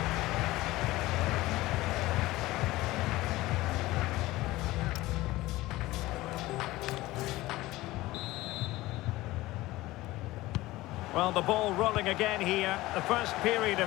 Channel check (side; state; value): right; quieter; 18.2 dB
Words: Well, the ball rolling again here, the first period